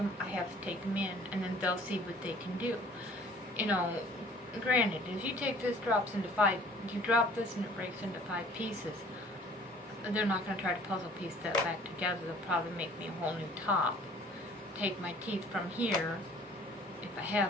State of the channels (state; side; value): normal; both; correlation 0.53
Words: I have to take them in, and then they'll see what they can do. You know, granted, if you take this, you drop this and it breaks into 5 pieces, they're not going to try to puzzle piece that back together. They'll probably make me a whole new top. Take my teeth from here, if I